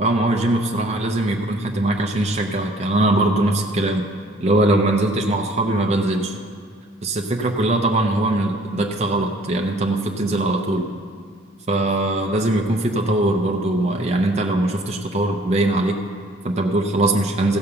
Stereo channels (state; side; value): normal; both; correlation 0.57